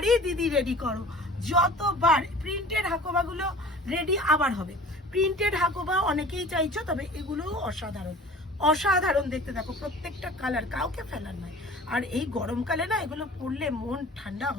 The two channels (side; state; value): both; normal; correlation 0.44